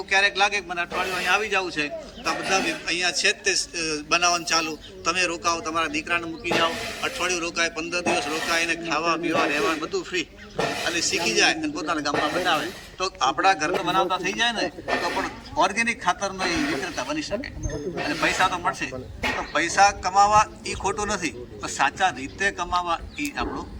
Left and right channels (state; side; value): identical; both; correlation 1.00